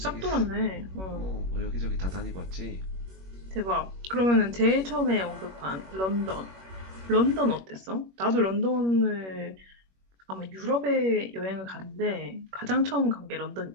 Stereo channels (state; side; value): late; left; 21 ms